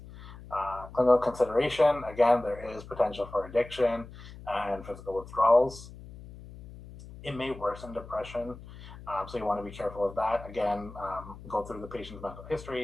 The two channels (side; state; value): left; noise; hum, 16 dB below the sound